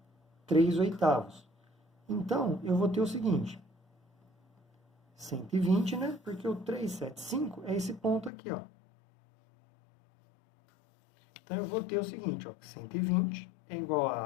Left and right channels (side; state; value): right; drops out; at 8.3 s